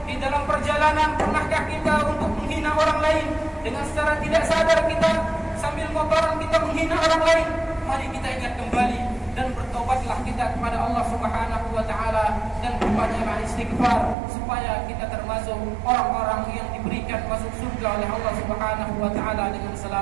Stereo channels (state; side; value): drops out; left; at 14.2 s